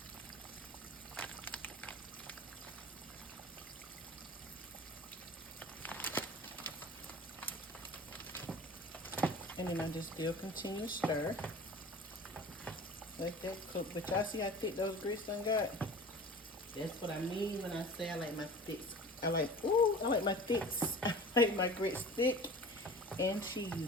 And then I just still continue to stir. Let that cook. But y'all see how thick those grits done got? That's what I mean when I say I like my thicks. I like my thicks. I like my grits thick and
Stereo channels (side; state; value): both; normal; correlation 0.40